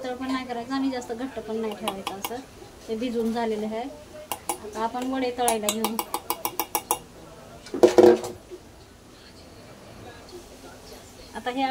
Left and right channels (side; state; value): both; identical; correlation 1.00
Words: पण नाही करायचं आणि जास्त घट्ट पण नाही ठेवायचं. असं ते भिजवून झालेलं आहे. आता आपण वडे तळायला घेऊ. आता हे